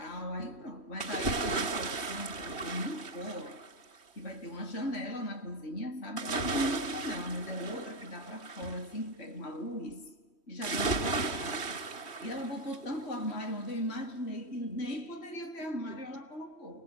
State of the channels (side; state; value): right; late; 3.1 ms